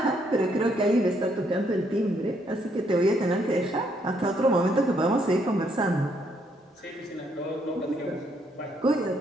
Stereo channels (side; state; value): both; normal; correlation 0.72